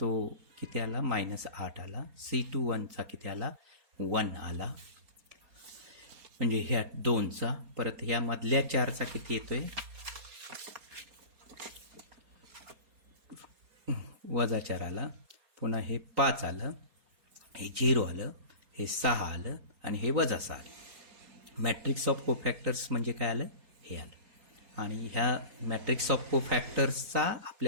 किती आला -8 आला. C21चा किती आला 1 आला, म्हणजे ह्या 2चा. परत ह्या मधल्या 4चा किती येतोय -4 आला. पुन्हा हे 5 आलं, हे 0 आलं, हे 6 आलं आणि हे -6 आलं. मॅट्रिक्स ऑफ कोफॅक्टर्स म्हणजे काय आलं, हे आलं. आणि ह्या मॅट्रिक्स ऑफ कोफॅक्टर्सचा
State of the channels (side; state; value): left; late; 4.3 ms